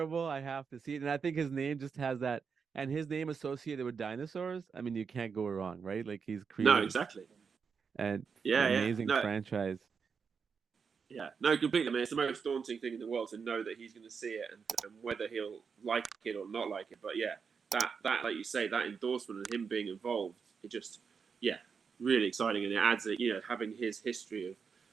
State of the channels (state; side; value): quieter; left; 5.9 dB